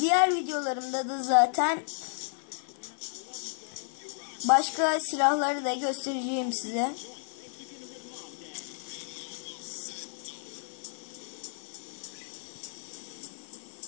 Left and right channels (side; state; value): right; silent; 56 dB below the other